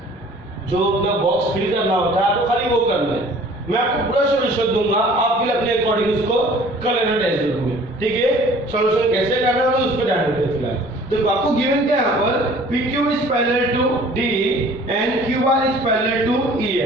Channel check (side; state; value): both; normal; correlation 0.51